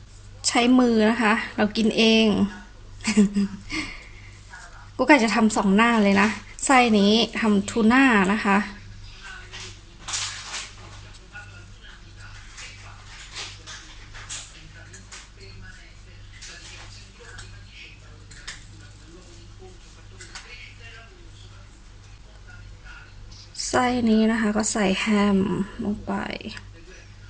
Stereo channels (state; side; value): identical; both; correlation 1.00